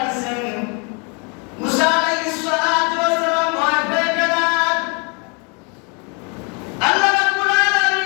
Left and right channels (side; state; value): right; quieter; 34.1 dB